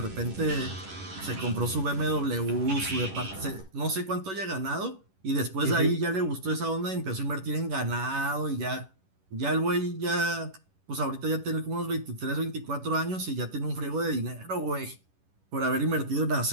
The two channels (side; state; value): left; late; 11 ms